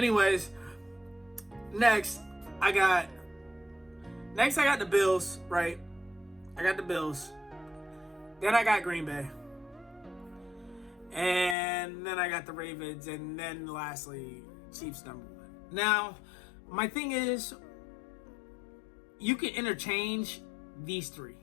next I got the Bills, right? I got the Bills. Then I got Green Bay. And then I got the Ravens. And then lastly, Chiefs number 1. Now, my thing is, you can interchange these three.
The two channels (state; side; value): drops out; right; at 11.6 s